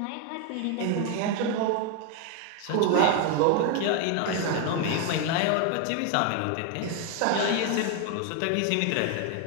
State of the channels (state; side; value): different; both; correlation 0.01